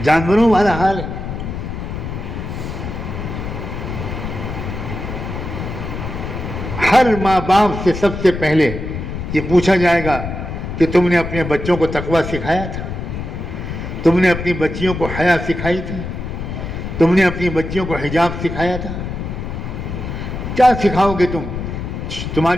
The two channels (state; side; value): noise; left; rumble, 6 dB below the sound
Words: جانوروں والا حال ہے۔ ہر ماں باپ سے سب سے پہلے یہ پوچھا جائے گا کہ تم نے اپنے بچوں کو تقویٰ سکھایا تھا؟ تم نے اپنی بچیوں کو حیا سکھائی تھی؟ تم نے اپنی بچیوں کو حجاب سکھایا تھا؟ کیا سکھاؤ گے تم؟